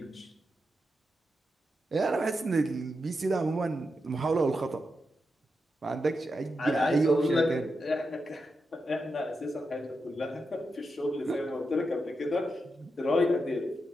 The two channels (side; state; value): both; normal; correlation 0.87